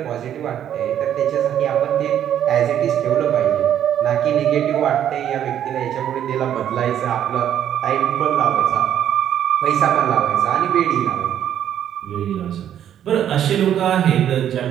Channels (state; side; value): quieter; left; 10.2 dB